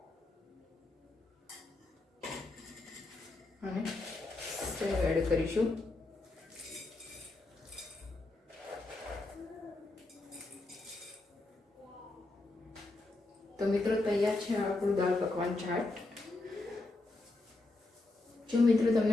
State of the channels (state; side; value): quieter; right; 3.0 dB